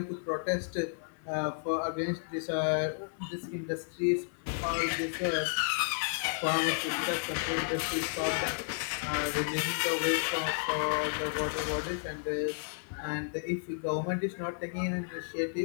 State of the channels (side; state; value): right; silent; 56 dB below the other